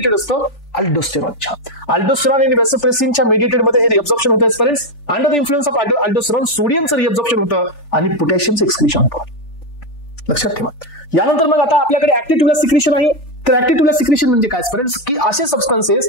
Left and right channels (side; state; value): right; late; 3.4 ms